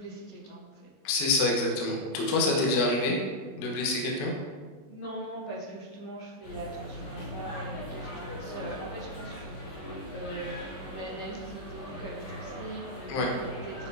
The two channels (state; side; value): late; right; 21 ms